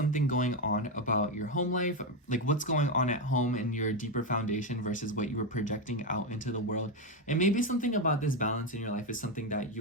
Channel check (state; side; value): normal; both; correlation 0.08